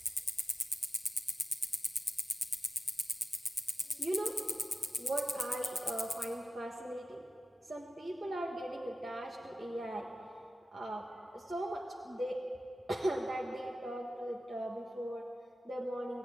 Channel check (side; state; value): both; normal; correlation 0.93